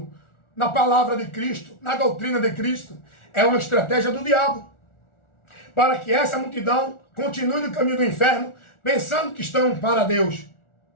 na palavra de Cristo, na doutrina de Cristo. É uma estratégia do diabo, para que essa multidão continue no caminho do inferno, pensando que estão para Deus,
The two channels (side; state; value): right; late; 1.4 ms